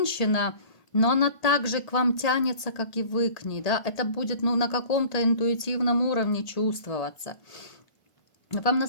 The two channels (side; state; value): right; late; 1.5 ms